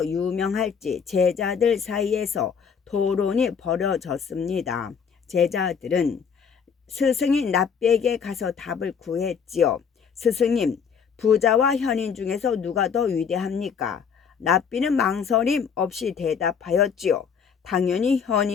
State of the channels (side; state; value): right; quieter; 6.6 dB